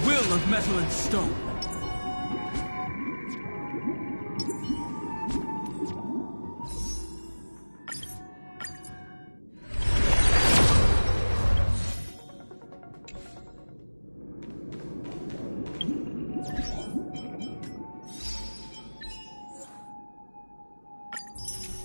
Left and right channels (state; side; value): inverted; both; correlation -1.00